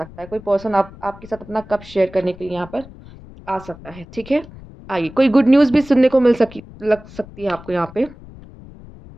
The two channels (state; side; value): noise; left; rumble, 19 dB below the sound